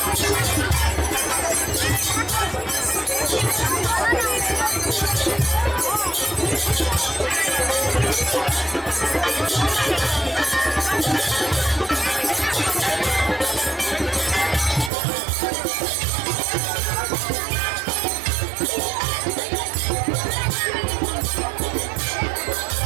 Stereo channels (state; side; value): drops out; left; at 14.9 s